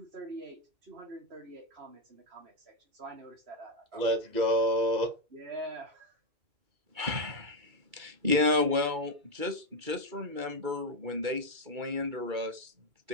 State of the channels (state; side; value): late; left; 2.3 ms